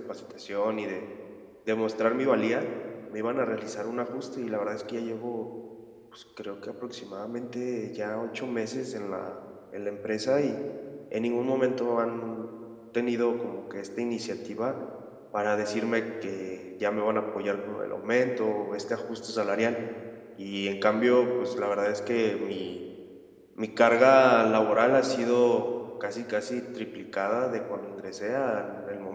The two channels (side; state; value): both; identical; correlation 1.00